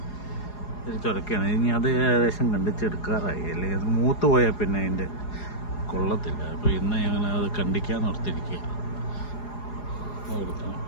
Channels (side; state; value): right; late; 4.8 ms